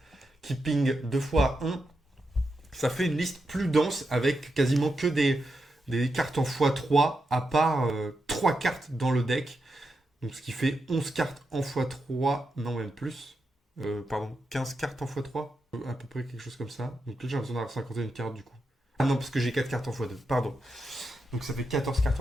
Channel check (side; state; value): both; normal; correlation 0.86